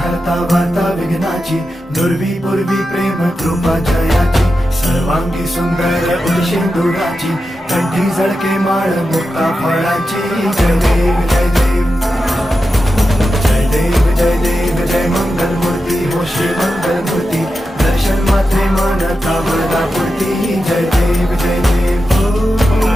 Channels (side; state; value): both; normal; correlation 0.90